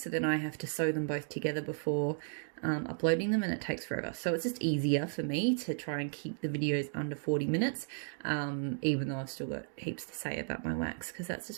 then I have to sew them both together before uploading them, and it takes forever. So it's just easier for me to try and keep the videos under 40 minutes, even though I've still got heaps to say about my wax, because that's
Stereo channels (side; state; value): left; silent; 55 dB below the other